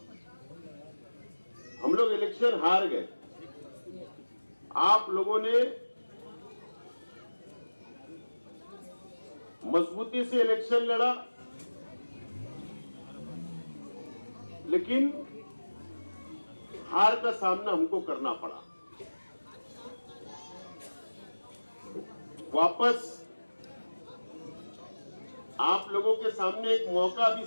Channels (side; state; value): both; inverted; correlation -1.00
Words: हम लोग इलेक्शन हार गए, आप लोगों ने मजबूती से इलेक्शन लड़ा, लेकिन हार का सामना हमको करना पड़ा। वापस आप लोगों के सामने एक मौका भी